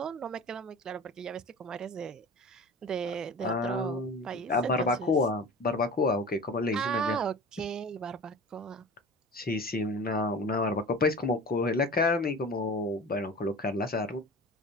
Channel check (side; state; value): both; normal; correlation 0.37